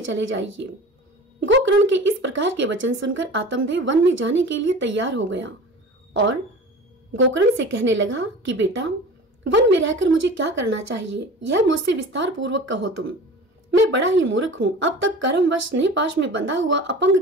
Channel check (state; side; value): normal; both; correlation 0.38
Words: चले जाइए। गोकर्ण के इस प्रकार के वचन सुनकर आत्मदेव वन में जाने के लिए तैयार हो गया और गोकर्ण से कहने लगा कि बेटा, वन में रहकर मुझे क्या करना चाहिए, यह मुझसे विस्तार पूर्वक कहो तुम। मैं बड़ा ही मूर्ख हूँ। अब तक कर्मवश स्नेहपाश में बंधा हुआ